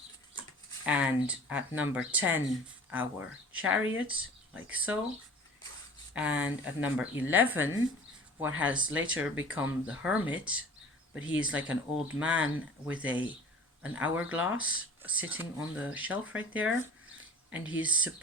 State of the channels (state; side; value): normal; both; correlation 0.44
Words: and at number 10 our Chariot, like so, and at number 11 what has later become the Hermit, but he is like an old man with an hourglass sitting on the shelf right there, and he's